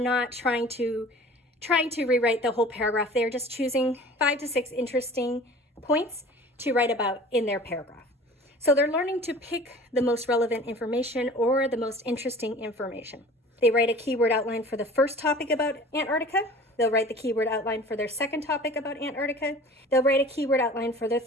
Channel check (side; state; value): both; normal; correlation 0.44